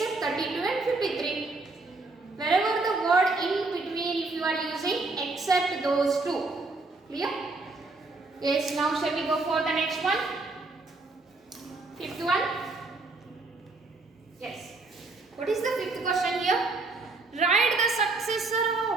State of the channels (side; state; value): left; quieter; 3.4 dB